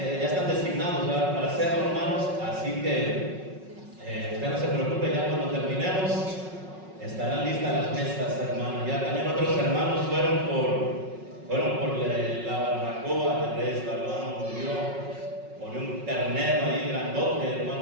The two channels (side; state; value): left; late; 5.4 ms